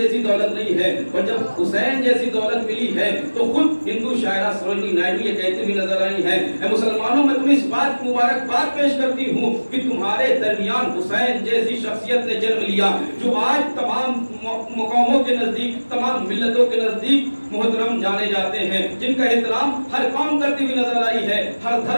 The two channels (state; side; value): inverted; both; correlation -1.00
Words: دولت نہیں ہے، اور جب حسین جیسی دولت ملی ہے تو خود ہندو شاعرہ سروجنی نائیڈو یہ کہتی ہوئی نظر آئی ہے، اے مسلمانوں میں تمہیں اس بات کی مبارکباد پیش کرتی ہوں کہ تمہارے درمیان حسین جیسی شخصیت نے جنم لیا جو آج تمام مقاموں کے نزدیک، تمام ملتوں کے نزدیک محترم جانے جاتے ہیں، جن کا احترام ہر قوم کرتی ہوئی نظر آئی ہے، ہر